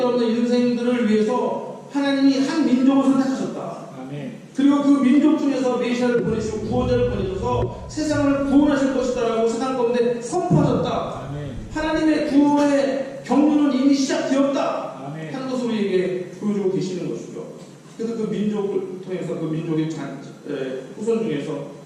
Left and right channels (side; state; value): both; identical; correlation 1.00